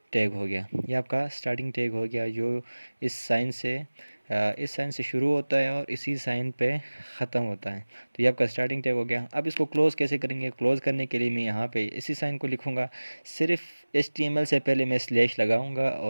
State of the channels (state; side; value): inverted; both; correlation -1.00